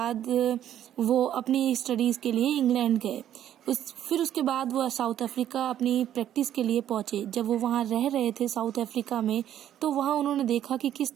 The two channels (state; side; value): quieter; left; 11.1 dB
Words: वो अपनी स्टडीज़ के लिए इंग्लैंड गए। फिर उसके बाद वो साउथ अफ्रीका अपनी प्रैक्टिस के लिए पहुंचे। जब वो वहाँ रह रहे थे साउथ अफ्रीका में, तो वहाँ उन्होंने देखा कि किस